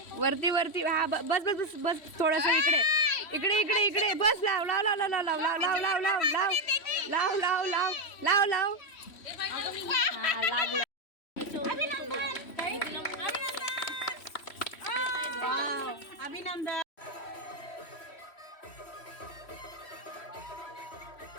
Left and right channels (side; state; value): right; late; 3.1 ms